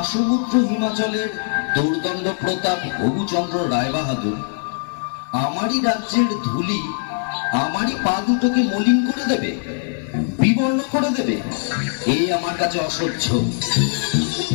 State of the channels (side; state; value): right; silent; digital silence